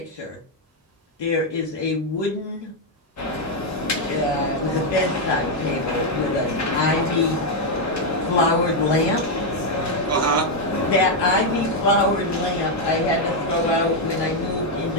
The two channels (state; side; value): normal; both; correlation 0.01